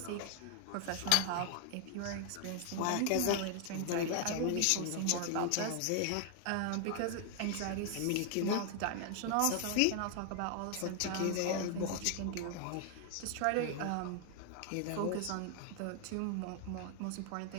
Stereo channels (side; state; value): both; different; correlation 0.00